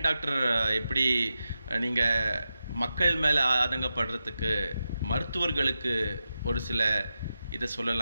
டாக்டர் எப்படி நீங்கள் மக்கள் மேலே ஆதங்கப்படுறதுக்கு மருத்துவர்களுக்கு ஒரு சில இதை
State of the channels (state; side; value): inverted; both; correlation -0.90